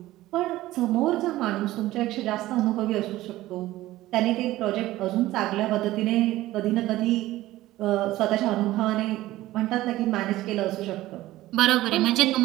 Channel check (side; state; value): left; quieter; 16.3 dB